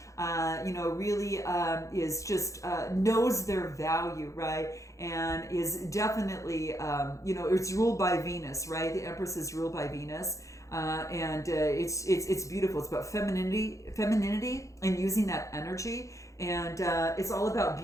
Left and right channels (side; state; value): right; late; 0.15 ms